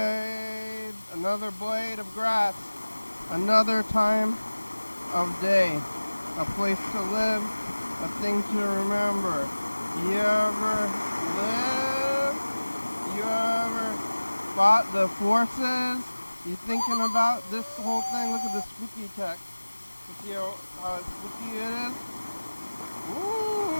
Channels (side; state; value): both; inverted; correlation -1.00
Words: of grass, another time of day, a place to live, a thing to remember. You ever live? You ever fought the forces? You thinking about this whole thing? Look at the spooky text. You see how spooky it is?